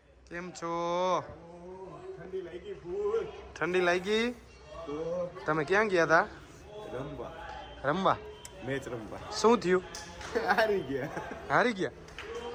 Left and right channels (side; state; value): both; identical; correlation 1.00